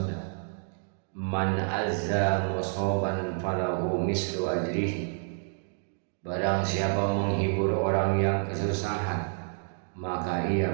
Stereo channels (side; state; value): left; silent; 58 dB below the other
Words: "Man azza musoban falahu mislu ajrihi." Barang siapa menghibur orang yang kesusahan, maka ia